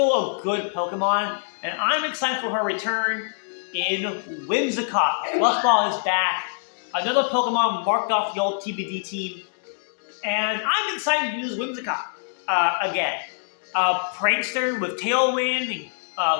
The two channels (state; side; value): silent; right; digital silence